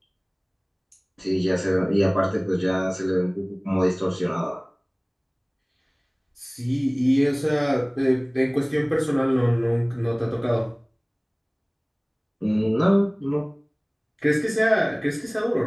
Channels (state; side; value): identical; both; correlation 1.00